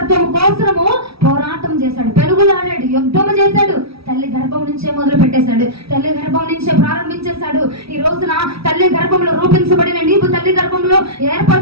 కోసము పోరాటం చేశాడు, పెనుగులాడాడు, యుద్ధము చేశాడు. తల్లి గర్భం నుంచే మొదలు పెట్టేశాడు, తల్లి గర్భం నుంచే ప్రారంభించేశాడు. ఈ రోజున తల్లి గర్భంలో రూపించబడిన నీవు, తల్లి గర్భంలో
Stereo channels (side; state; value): left; late; 0.76 ms